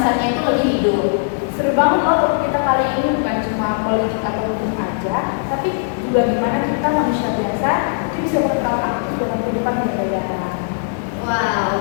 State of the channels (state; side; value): silent; right; 67 dB below the other